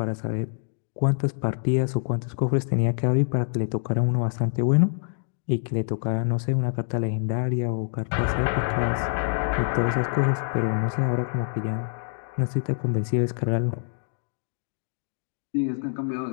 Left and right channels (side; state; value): right; silent; 61 dB below the other